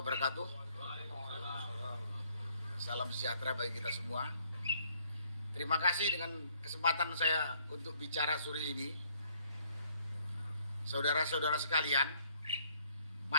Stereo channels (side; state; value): both; inverted; correlation -0.65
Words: Salam sejahtera bagi kita semua. Terima kasih dengan kesempatan saya untuk bicara sore ini. Saudara-saudara sekalian,